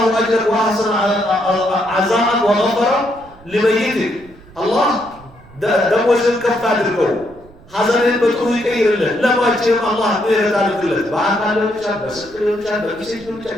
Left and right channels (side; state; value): right; noise; rumble, 23 dB below the sound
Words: أجرك وأحسن عزاءك وغفر لميتك الله ደሞዝን ከፍ አድርገው ሐዘንን በጥሩ ይቀይርልን። ለባችንም አላህ ምህረት አድርግለት። በአካል ሊሆን ይችላል፣ በስልክ ሊሆን ይችላል፣ በጊዜት ሊሆን